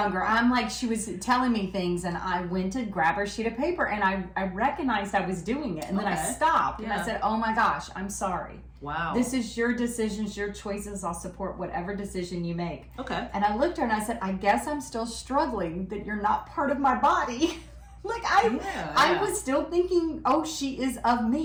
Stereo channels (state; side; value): identical; both; correlation 1.00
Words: I'm like, she was telling me things and I went to grab her sheet of paper and I recognized I was doing it. And then I stopped and I said, oh my gosh, I'm sorry. Wow. This is your decisions, your choices. I'll support whatever decision you make. Okay. And I looked at her and I said, I guess I'm still struggling that you're not part of my body. Like I was still thinking, oh, she is of